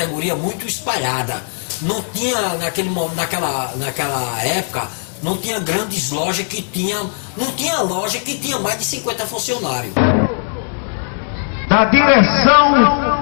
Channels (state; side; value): silent; right; 63 dB below the other